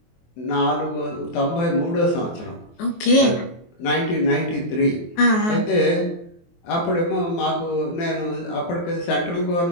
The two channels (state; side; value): late; right; 23 ms